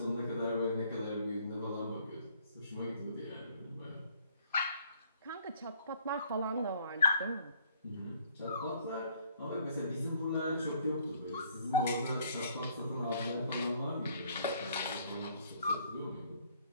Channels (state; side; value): inverted; both; correlation -0.63